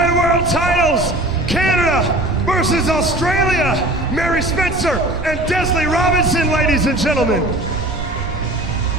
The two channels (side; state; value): right; noise; rumble, 9 dB below the sound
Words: World Titles, Canada versus Australia, Mary Spencer and Desley Robinson, ladies and gentlemen.